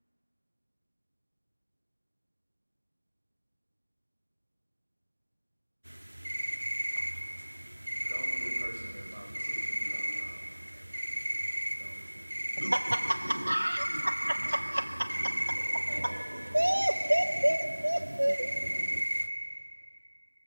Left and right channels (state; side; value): inverted; both; correlation -1.00